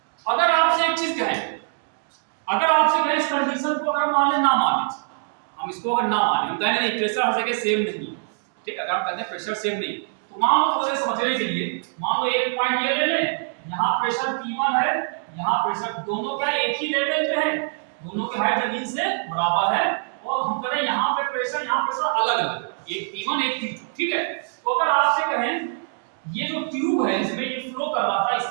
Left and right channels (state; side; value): silent; left; digital silence